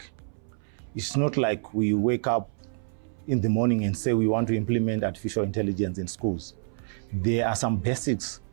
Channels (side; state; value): left; silent; 60 dB below the other